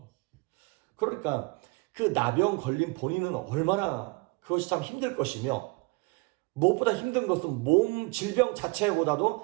그러니까 그 나병 걸린 본인은 얼마나 그것이 참 힘들 것이며, 무엇보다 힘든 것은 몸 질병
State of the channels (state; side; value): quieter; left; 27.0 dB